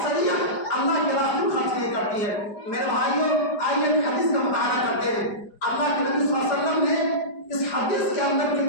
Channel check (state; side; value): late; right; 4.9 ms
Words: اللہ کے راستے میں خرچ نہیں کرتی ہے۔ میرے بھائیوں، آئیے ایک حدیث کا مطالعہ کرتے ہیں۔ اللہ کے نبی صلی اللہ علیہ وسلم نے اس حدیث کے اندر